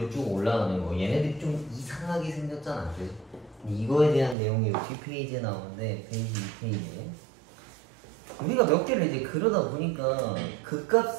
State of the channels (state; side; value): drops out; left; at 4.4 s